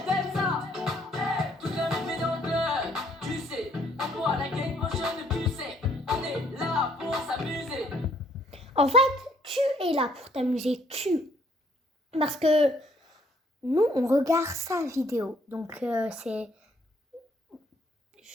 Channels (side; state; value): both; normal; correlation 0.65